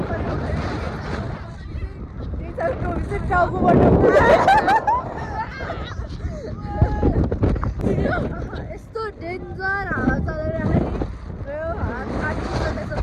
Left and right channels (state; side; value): identical; both; correlation 1.00